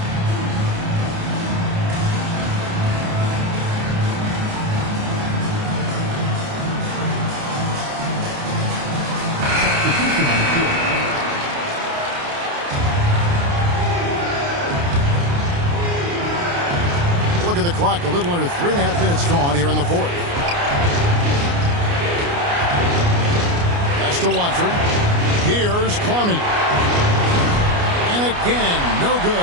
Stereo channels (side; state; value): left; late; 29 ms